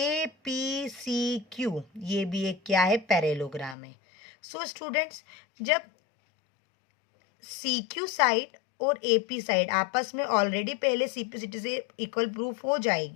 ये भी एक क्या है, पैरेललोग्राम है। सो स्टूडेंट्स, जब CQ साइड और AP साइड आपस में ऑलरेडी पहले CPCT से इक्वल प्रूफ हो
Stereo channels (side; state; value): right; drops out; at 3.8 s